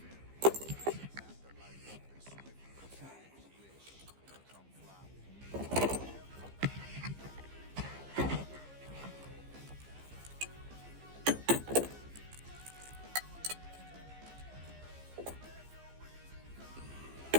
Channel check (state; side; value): late; left; 15 ms